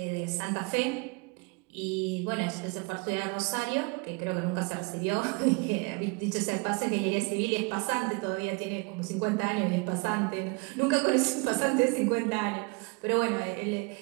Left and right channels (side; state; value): left; quieter; 30.5 dB